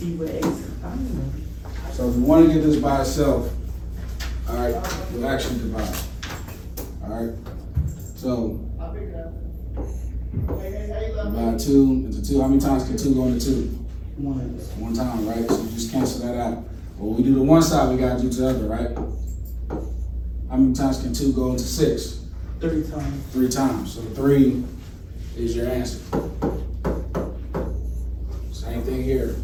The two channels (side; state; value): both; identical; correlation 1.00